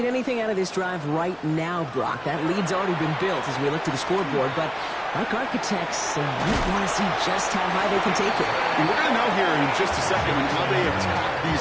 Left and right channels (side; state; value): both; identical; correlation 1.00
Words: anything out of this drive right now, Brock. That lead's already been built as we look to the scoreboard. But like architects, we want to see just how high they can take it. And we're going to know here in just a second how they attack